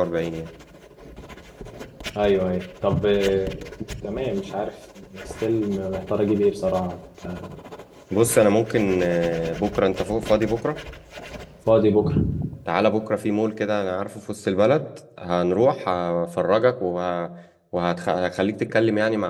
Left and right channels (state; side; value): identical; both; correlation 1.00